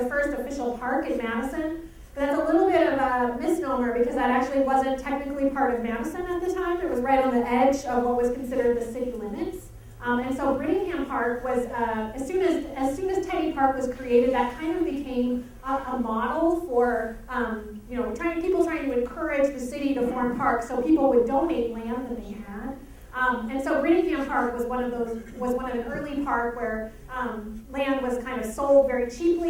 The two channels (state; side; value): identical; both; correlation 1.00